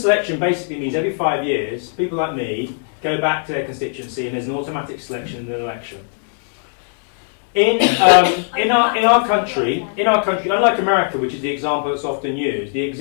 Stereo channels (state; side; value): silent; right; 65 dB below the other